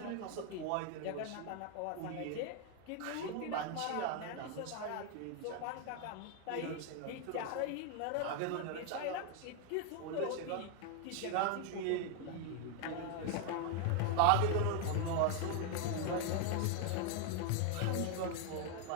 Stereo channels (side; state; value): both; different; correlation 0.00